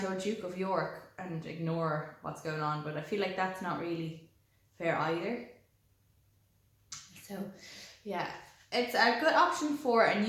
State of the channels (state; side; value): identical; both; correlation 1.00